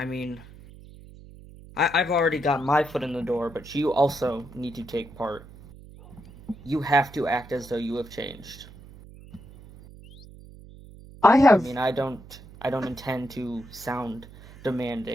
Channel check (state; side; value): noise; right; hum, 19 dB below the sound